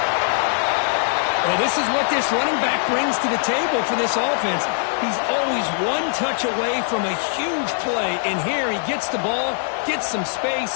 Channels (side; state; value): right; silent; digital silence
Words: Well, this is what this running back brings to the table for this offense. He's always one touch away from a huge play. And here he gets the ball, gets some